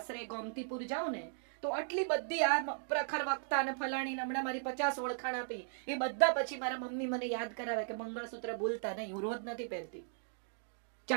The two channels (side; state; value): left; silent; digital silence